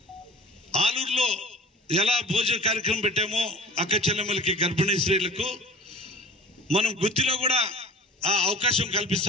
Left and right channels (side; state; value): both; normal; correlation 0.40